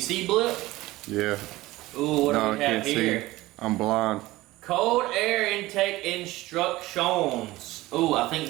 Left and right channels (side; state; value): left; quieter; 18.4 dB